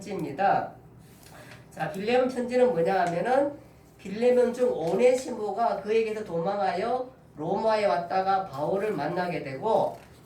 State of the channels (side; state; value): both; identical; correlation 1.00